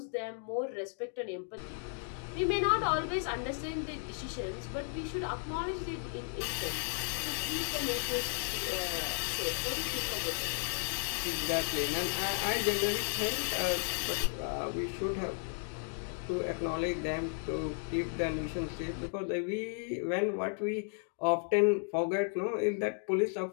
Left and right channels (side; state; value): right; silent; 55 dB below the other